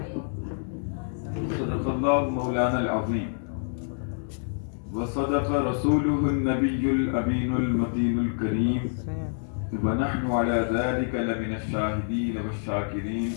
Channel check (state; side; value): silent; right; digital silence